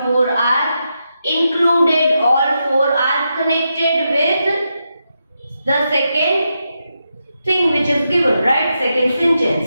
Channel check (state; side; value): inverted; both; correlation -0.85